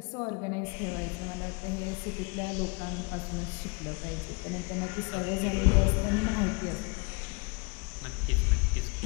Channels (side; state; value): right; quieter; 29.9 dB